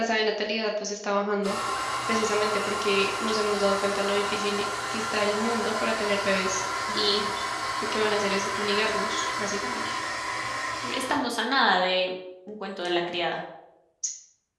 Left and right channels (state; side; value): identical; both; correlation 1.00